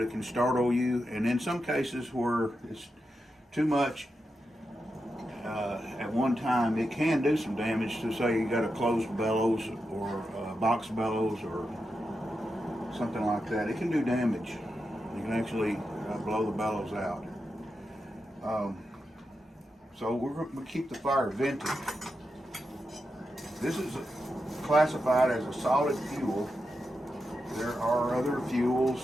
it can startle you. And in some cases where it's too much at one time, it can do some damage. To say you got a closed bellows or a box bellows or something like that, it can do damage. You can actually blow the bellows out. So we're going to keep the fire vented. This is classified as a solid fuel. There are other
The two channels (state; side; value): normal; both; correlation 0.88